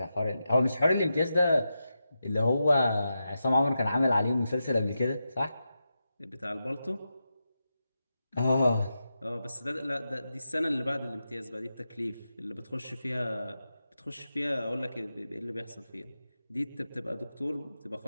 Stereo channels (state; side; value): inverted; both; correlation -0.89